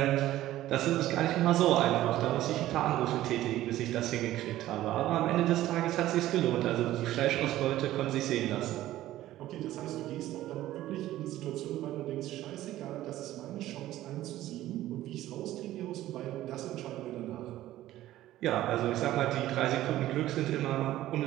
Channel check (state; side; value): quieter; left; 14.6 dB